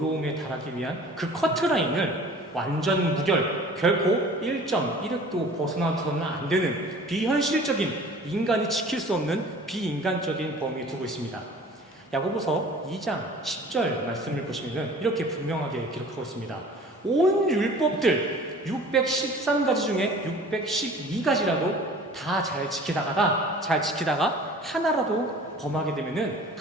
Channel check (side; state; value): both; normal; correlation 0.46